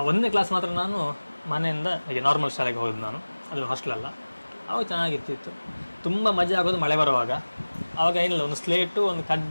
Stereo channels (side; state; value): both; inverted; correlation -1.00